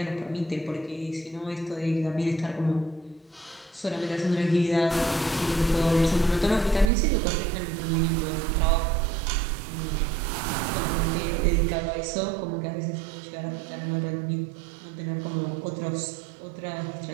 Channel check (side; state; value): left; drops out; at 6.9 s